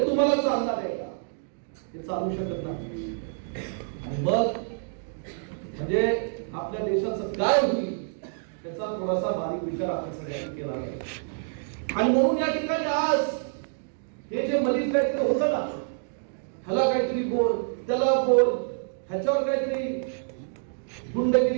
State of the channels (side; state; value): left; silent; digital silence